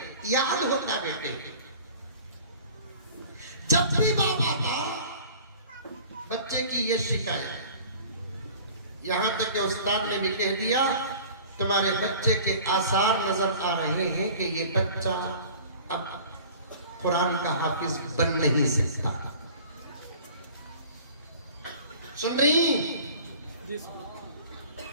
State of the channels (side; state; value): both; inverted; correlation -0.45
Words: याद होता बेटे। जब भी बाबा था बच्चे की ये शिकायत, यहां तक कि उस्ताद ने भी कह दिया तुम्हारे बच्चे के आसार नजर आ रहे हैं कि ये बच्चा अब कुरान का हाफिज बन नहीं सकता। सुन रही?